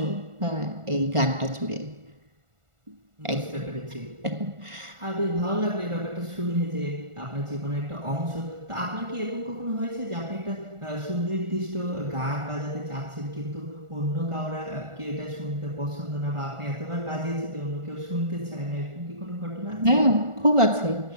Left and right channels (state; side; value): late; left; 1.4 ms